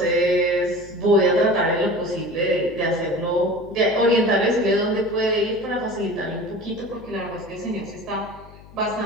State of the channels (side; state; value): left; noise; hum, 21 dB below the sound